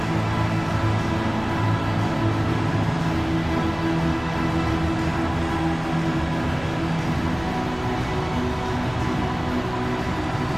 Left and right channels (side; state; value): right; noise; hum, 17 dB below the sound